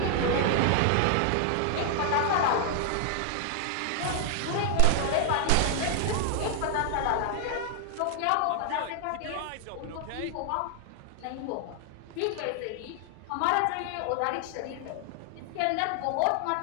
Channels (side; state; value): both; different; correlation 0.00